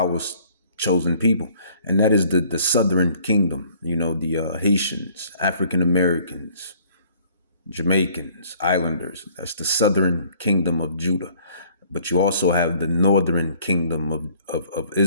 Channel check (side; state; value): both; inverted; correlation -0.58